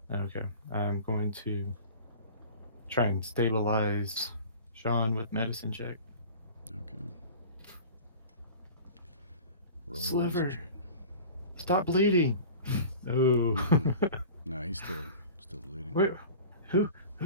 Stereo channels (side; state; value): both; inverted; correlation -0.39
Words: Okay. I'm going to try and stabilize Sean with medicine check. Okay. Roll a Sliver. medicine check. Stop bleeding. No. No, he's still bleeding. Wait, who